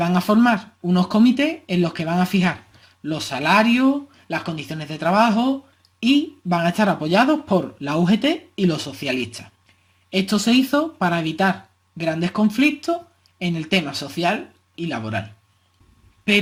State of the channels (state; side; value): identical; both; correlation 1.00